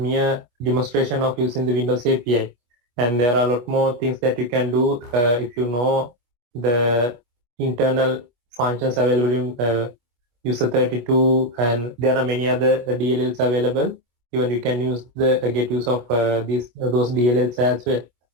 demonstration of using the Windows API, and there are a lot more things that you can do if you know the internal functions available in user 32, and there are many other DLLs available. Even you can use the get use of those DLLs as well,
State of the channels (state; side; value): late; left; 25 ms